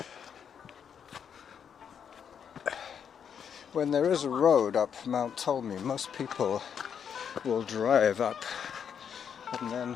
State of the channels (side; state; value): right; quieter; 7.7 dB